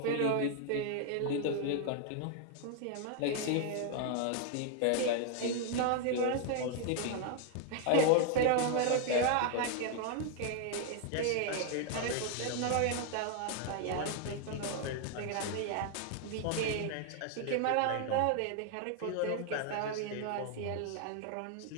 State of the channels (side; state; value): both; different; correlation 0.00